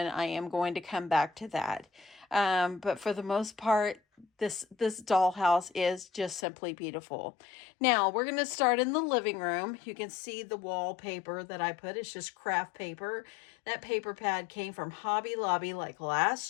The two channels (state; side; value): drops out; right; at 6.5 s